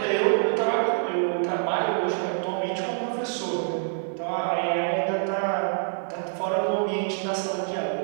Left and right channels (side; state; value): left; silent; digital silence